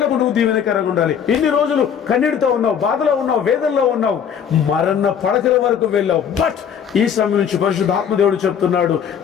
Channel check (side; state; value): right; quieter; 7.9 dB